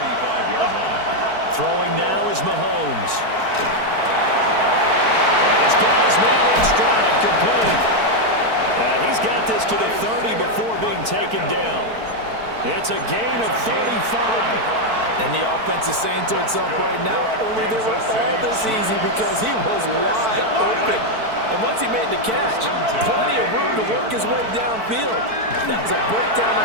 line. Throwing now is Mahomes. And he's got his man in stride, complete. And he's got this to the 30 before being taken down. It's a gain of 35. And the offense is saying to itself right now, only they were all this easy because he was wide open. And once he made the catch, plenty of room to work his way downfield. That was a breakdown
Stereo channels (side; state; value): left; late; 4.5 ms